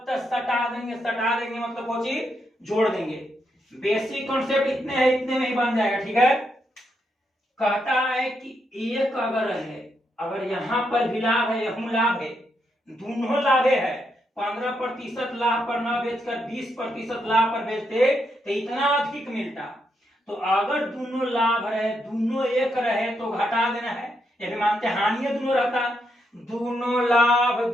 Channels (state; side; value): normal; both; correlation 0.80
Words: तक सटा देंगे। सटा देंगे मतलब वो चीज जोड़ देंगे। बेसिक कॉन्सेप्ट इतने है, इतने में ही बन जाएगा। ठीक है, कहता है कि एक अगर है, अगर यहां पर भी लाभ है यहू लाभ है, दोनों लाभे है। 15% लाभ पर न बेचकर 20% लाभ पर बेचते तो इतना अधिक मिलता। तो अगर दोनों लाभ रहे, दोनों एक रहे तो घटा देना है। ये भी मानते हानि दोनों रहता, दोनों लाभ